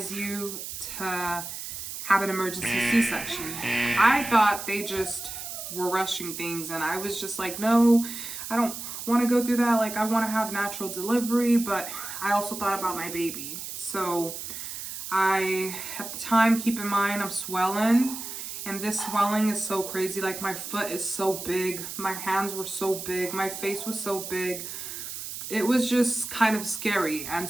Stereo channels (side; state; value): right; noise; hiss, 8 dB below the sound